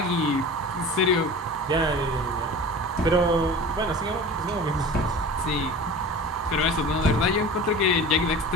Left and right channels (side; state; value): both; normal; correlation 0.37